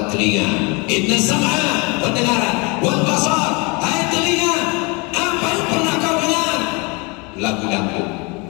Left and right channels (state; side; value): quieter; right; 29.2 dB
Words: telinga? Inna sam'a, pendengaran, wal basar, hai telinga, apa yang pernah kau dengar? Lagu dangdut.